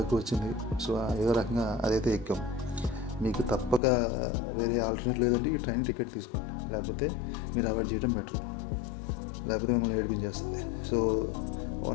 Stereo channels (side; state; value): right; drops out; at 3.8 s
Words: వచ్చింది. సో ఏదో రకంగా అదైతే ఎక్కాం. మీకు తప్పక వేరే ఆల్టర్నేట్ లేదంటే ఈ ట్రైన్ టికెట్ తీసుకోండి, లేకపోతే మీరు అవాయిడ్ చేయడం బెటర్, లేకపోతే మిమ్మల్ని ఏడిపించేస్తుంది. సో